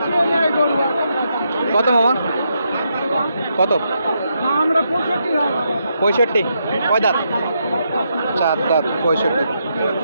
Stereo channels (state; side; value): inverted; both; correlation -0.80